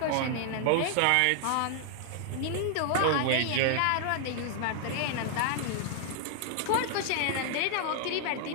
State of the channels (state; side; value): different; both; correlation 0.00